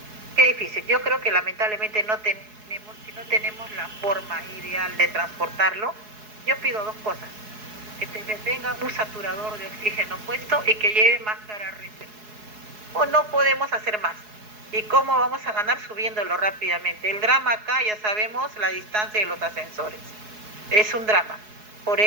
Qué difícil. Yo creo que lamentablemente si no tenemos la forma ideal de transportarlo, yo pido dos cosas: que tenga un saturador de oxígeno puesto y que lleve máscara reserva. O no podemos hacer más. ¿Y cómo vamos a ganar? Subiéndolo rápidamente. El drama acá, ya sabemos, la distancia de los ascensores. Es un drama. Por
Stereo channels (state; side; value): late; left; 4.7 ms